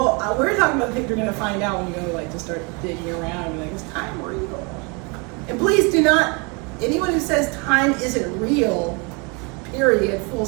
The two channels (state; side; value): quieter; left; 31.4 dB